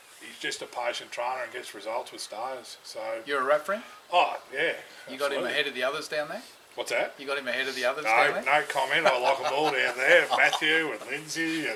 just a patient trainer and gets results with stayers. So You're a rep for him? oh yeah, You got him absolutely. ahead of the others down there? What's that? You got him ahead of the others down No, there? no comment. I like them all down there. Matthew and Lindsay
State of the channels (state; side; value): identical; both; correlation 1.00